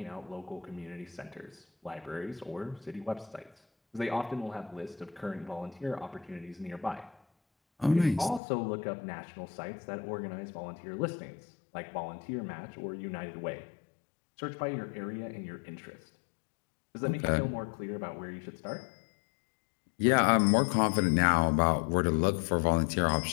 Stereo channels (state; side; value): drops out; right; at 8.4 s